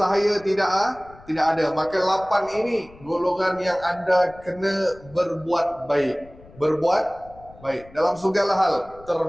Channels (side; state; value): left; noise; rumble, 23 dB below the sound